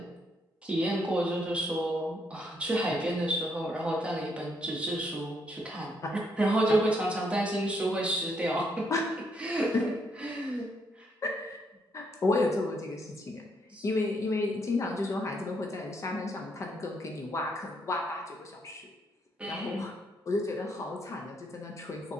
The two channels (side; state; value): both; normal; correlation 0.74